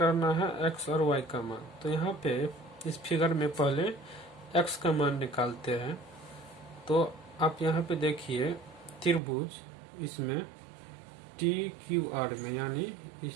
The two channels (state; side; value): drops out; left; at 9.2 s